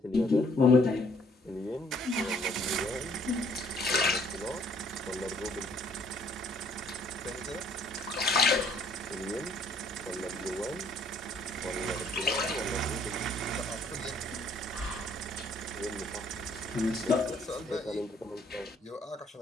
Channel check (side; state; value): both; normal; correlation 0.62